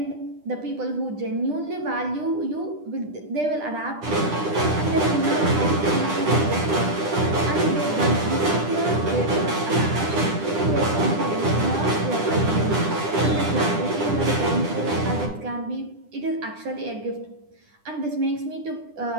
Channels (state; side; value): late; left; 10 ms